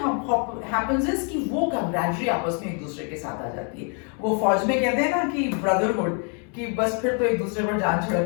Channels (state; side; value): quieter; right; 39.4 dB